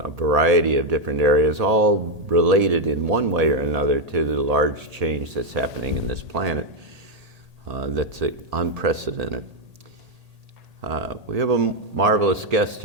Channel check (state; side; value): late; left; 1.8 ms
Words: a variety of different areas, all related in one way or another to the large change that's happening in this planet that's unprecedented. We have a marvelous guest